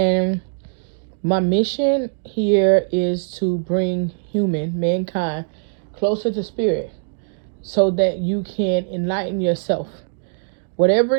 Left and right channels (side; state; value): left; silent; digital silence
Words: my mission here is to bring mankind, closer to spirit so that you can enlighten yourself. Whatever